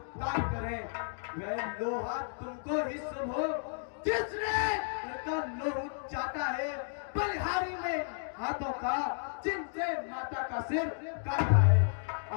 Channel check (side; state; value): right; silent; digital silence